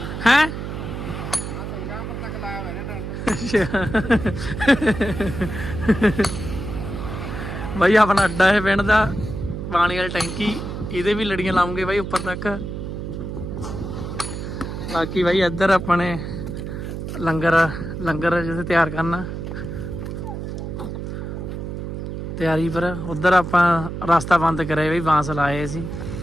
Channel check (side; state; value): right; noise; hum, 6 dB below the sound